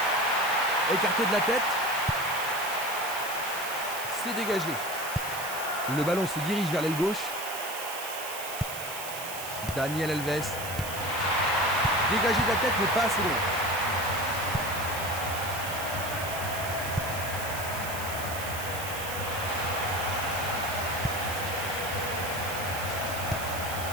Écarté de la tête. C'est dégagé. Le ballon se dirige vers l'aile gauche. Daniel Alves. Dégagé de la tête, mais pas assez loin.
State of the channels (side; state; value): right; noise; hiss, 8 dB below the sound